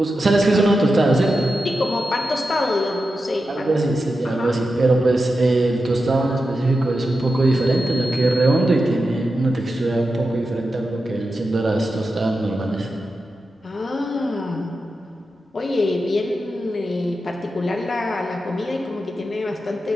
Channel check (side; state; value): both; normal; correlation 0.90